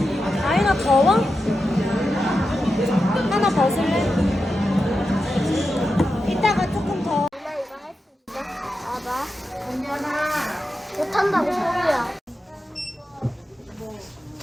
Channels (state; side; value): normal; both; correlation 0.90